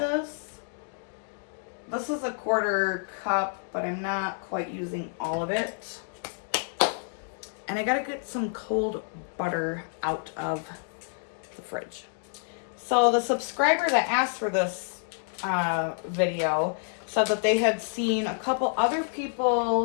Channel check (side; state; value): right; silent; digital silence